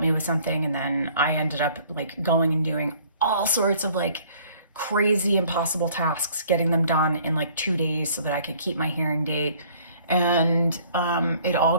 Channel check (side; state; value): both; inverted; correlation -0.56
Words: me with something, and then I ended up like going and doing all sorts of like crazy impossible tasks, getting them done in like 2 days so that I could keep my hearing date. And it all